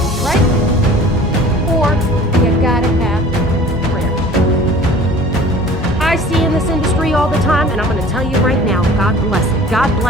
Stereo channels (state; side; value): normal; both; correlation 0.46